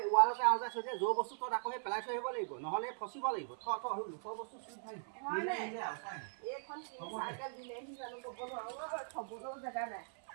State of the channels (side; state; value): left; silent; 51 dB below the other